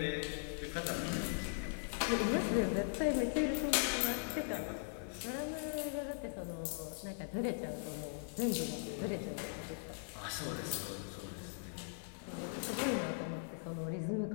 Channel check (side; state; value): right; silent; digital silence